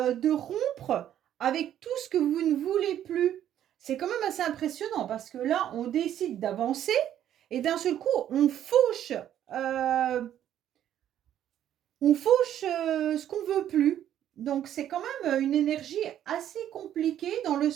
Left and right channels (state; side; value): quieter; left; 11.0 dB